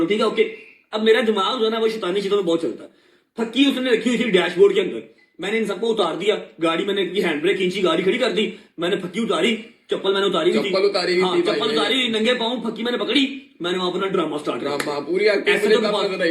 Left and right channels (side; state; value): both; identical; correlation 1.00